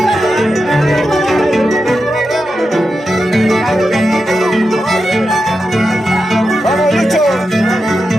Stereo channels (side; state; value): both; normal; correlation 0.89